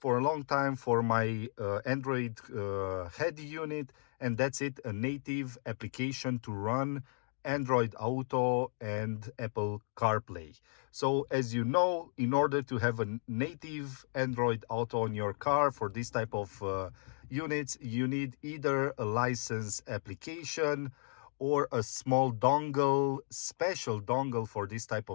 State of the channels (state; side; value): silent; right; 55 dB below the other